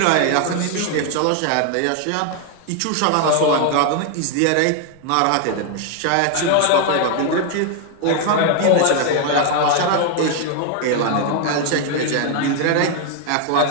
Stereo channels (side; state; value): both; different; correlation 0.00